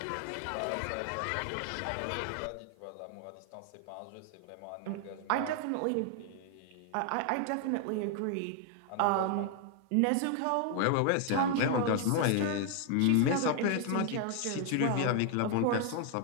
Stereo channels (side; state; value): both; different; correlation 0.00